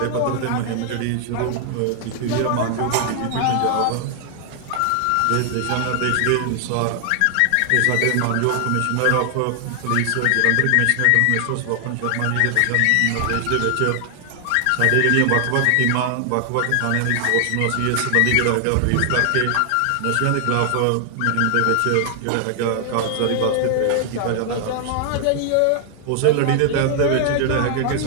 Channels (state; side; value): different; both; correlation 0.00